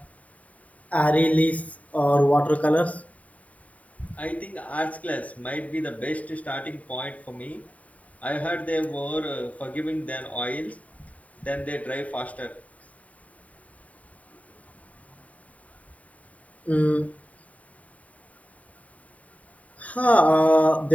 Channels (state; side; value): late; right; 0.069 ms